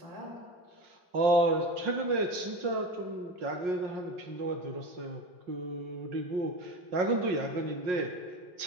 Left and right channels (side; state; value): left; late; 5.6 ms